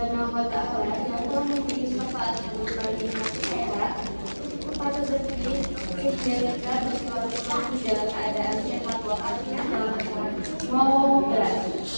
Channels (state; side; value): inverted; both; correlation -1.00